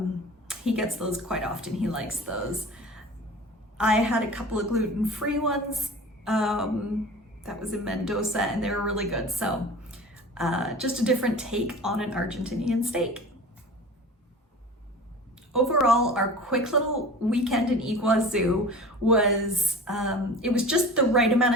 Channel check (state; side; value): normal; both; correlation 0.38